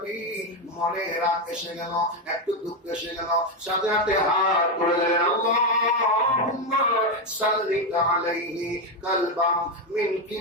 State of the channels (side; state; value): both; normal; correlation 0.08